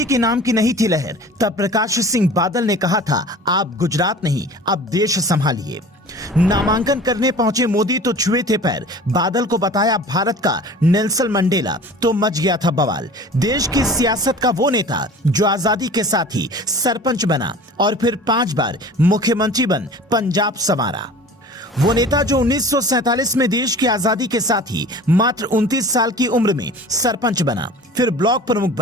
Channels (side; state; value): both; normal; correlation 0.42